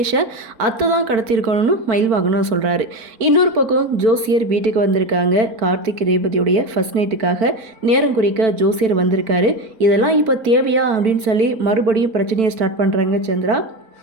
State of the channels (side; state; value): left; late; 4.5 ms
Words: அத்தை தான் கடத்திருக்கணும்னு மயில் வாங்கணும்னு சொல்கிறாரு. இன்னொரு பக்கம் ஜோசியர் வீட்டுக்கு வந்திருக்காங்க. கார்த்திக் ரேவதியுடைய ஃபர்ஸ்ட் நைட்டுக்காக நேரம் குறிக்க ஜோசியர் வந்திருக்காரு. இதெல்லாம் இப்போ தேவையா அப்படின்னு சொல்லி மறுபடியும் பிரச்சனையை ஸ்டார்ட் பண்ணுறாங்க சந்திரா.